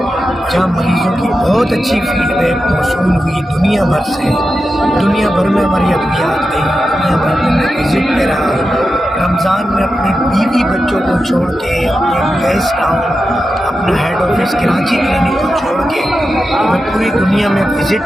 جہاں مریضوں کی بہت اچھی فیڈ بیک موصول ہوئی دنیا بھر سے، دنیا بھر میں ہماری ادویات گئی، دنیا بھر میں میں وزٹ پہ رہا رمضان میں اپنے بیوی بچوں کو چھوڑ کے، اپنے گیس ٹاؤن، اپنا ہیڈ آفس کراچی کلینک کو چھوڑ کے میں پوری دنیا میں وزٹ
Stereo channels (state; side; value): normal; both; correlation 0.90